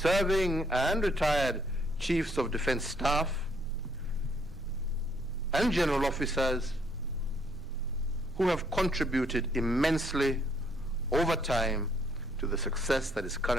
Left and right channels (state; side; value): noise; right; rumble, 17 dB below the sound